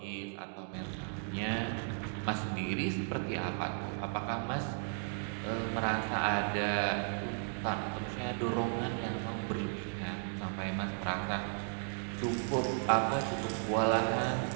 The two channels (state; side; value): silent; left; 54 dB below the other